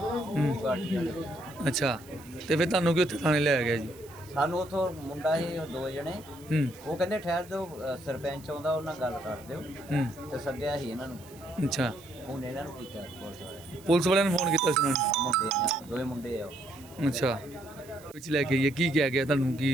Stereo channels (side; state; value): right; noise; hiss, 23 dB below the sound